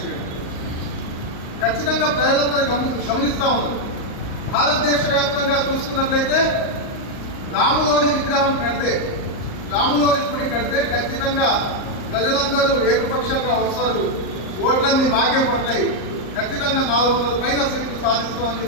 చేయడం ఖచ్చితంగా ప్రజలందరూ గమనిస్తూ ఉన్నారు. భారతదేశ వ్యాప్తంగా చూసుకున్నట్లయితే రాములోని విగ్రహం కడితే, రాములోని గుడి కడితే ఖచ్చితంగా ప్రజలందరూ ఏకపక్షంగా వస్తారు, ఓట్లన్నీ మాకే పడతాయి, ఖచ్చితంగా 400 పైన సీట్లు సాధిస్తామని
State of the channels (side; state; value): right; late; 38 ms